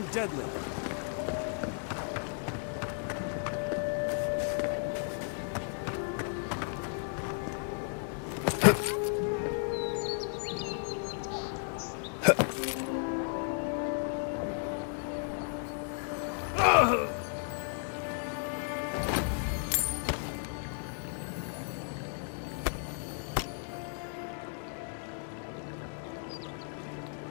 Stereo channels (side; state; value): right; silent; 55 dB below the other